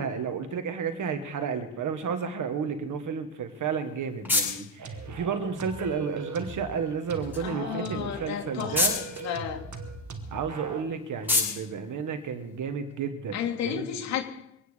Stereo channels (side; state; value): both; normal; correlation 0.05